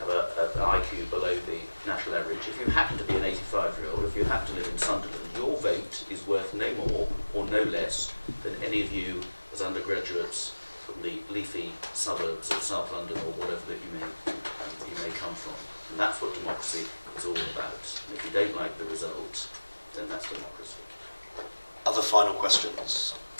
an IQ below the national average, if you happen to be an 85-year-old, if you happen to live in Sunderland, your vote is worth no more or no less than any of you as undergraduates from the leafy suburbs of South London or whatever that you may come from. And that's what democracy is all about. And if you don't like the result, then that's democracy. Other final questions?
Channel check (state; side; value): inverted; both; correlation -1.00